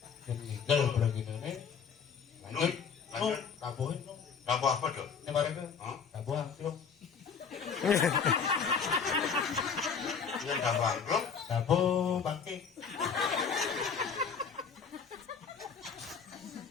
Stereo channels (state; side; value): quieter; right; 6.4 dB